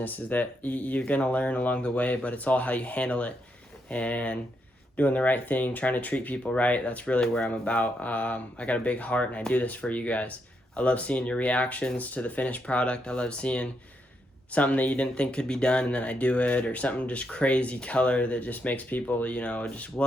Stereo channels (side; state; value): both; normal; correlation 0.80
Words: is that you're gonna learn along the way, but it's all how you handle it and doing the right thing, trying to treat people right. That's really where I'm about. I got a big heart, and I do this for you guys. I love seeing your reactions to the finished product. I love seeing something that you didn't think could be done, and then I do it, or something just crazy color that just makes people, you know, just,